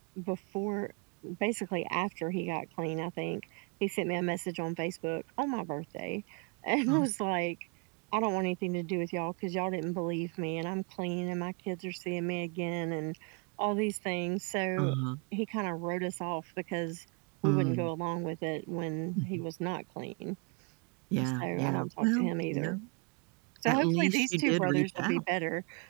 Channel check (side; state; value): left; quieter; 35.1 dB